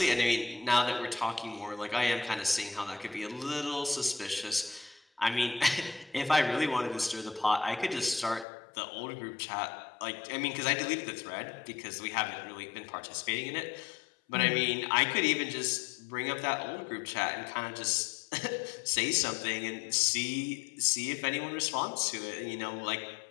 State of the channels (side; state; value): right; drops out; at 8.5 s